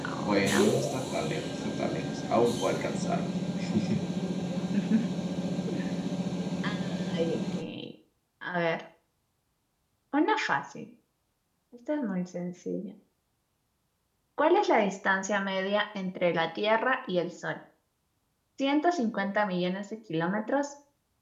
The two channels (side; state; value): both; identical; correlation 1.00